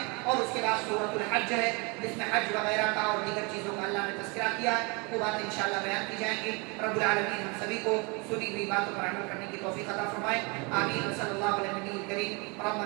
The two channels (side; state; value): left; quieter; 30.0 dB